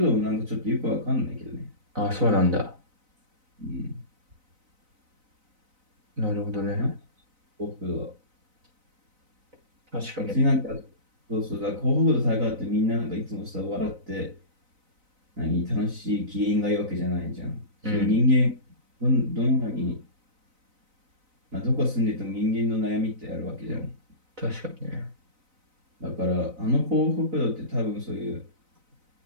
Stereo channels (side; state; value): left; late; 4.0 ms